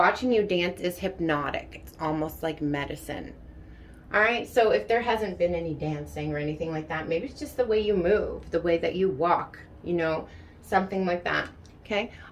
you dance is hypnotic. It's almost like medicine. All right, so if there hasn't been any dancing or anything like that, maybe it's just the way you move, the way that you walk, you know, something like that. Okay,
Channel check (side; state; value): both; identical; correlation 1.00